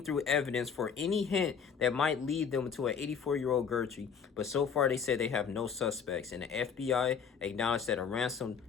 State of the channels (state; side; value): quieter; right; 6.7 dB